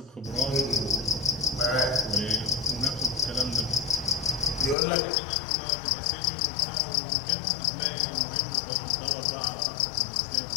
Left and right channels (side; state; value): right; drops out; at 4.8 s